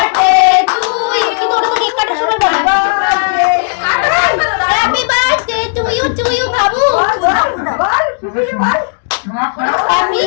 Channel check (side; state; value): right; silent; digital silence